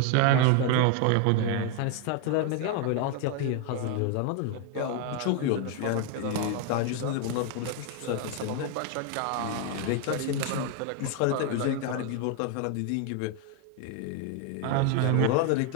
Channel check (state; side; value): different; both; correlation 0.01